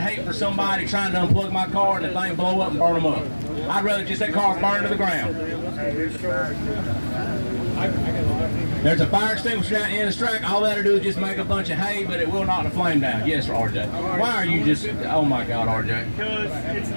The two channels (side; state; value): both; inverted; correlation -1.00